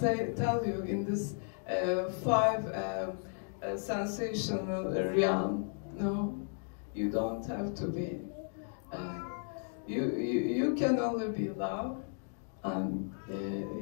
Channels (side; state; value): right; silent; 55 dB below the other